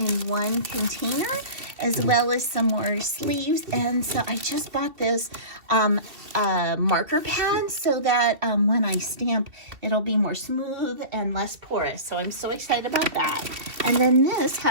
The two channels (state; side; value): late; left; 2.7 ms